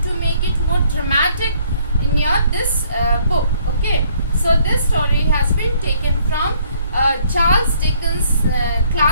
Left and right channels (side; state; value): both; inverted; correlation -0.64